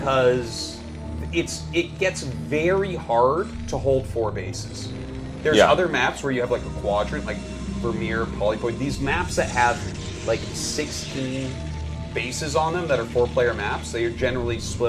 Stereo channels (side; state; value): both; identical; correlation 1.00